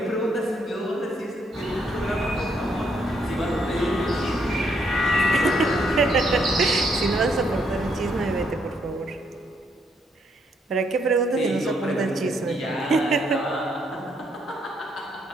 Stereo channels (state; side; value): normal; both; correlation 0.73